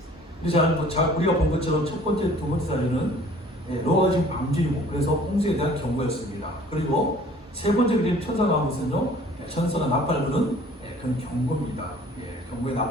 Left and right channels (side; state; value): both; normal; correlation 0.52